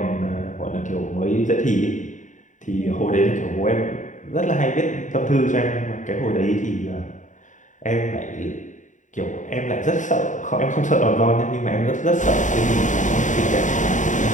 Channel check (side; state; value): right; late; 0.36 ms